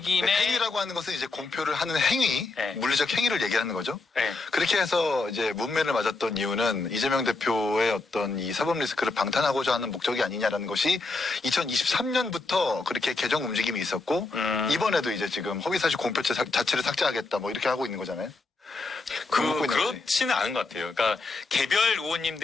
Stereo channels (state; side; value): quieter; right; 3.6 dB